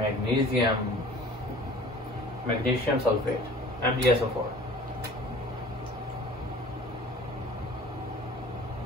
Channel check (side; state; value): both; normal; correlation 0.46